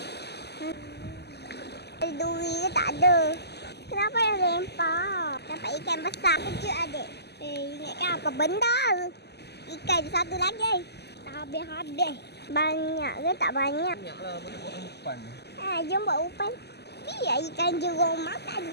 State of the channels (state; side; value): late; right; 0.49 ms